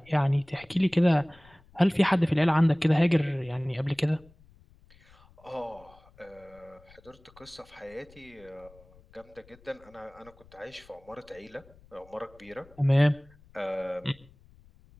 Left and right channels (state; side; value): noise; left; rumble, 27 dB below the sound